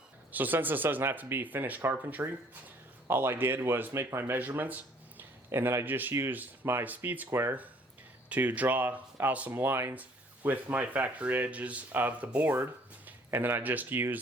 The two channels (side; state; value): both; normal; correlation 0.59